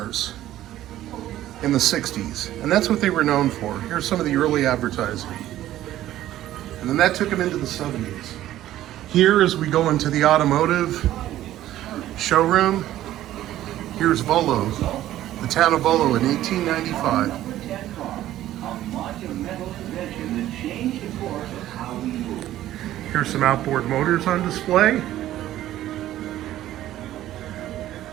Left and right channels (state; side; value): quieter; left; 13.6 dB